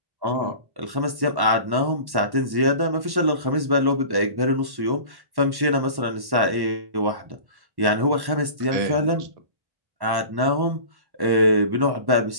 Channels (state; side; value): late; left; 1.1 ms